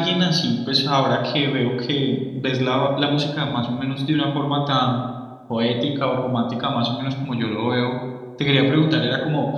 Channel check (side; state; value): both; identical; correlation 1.00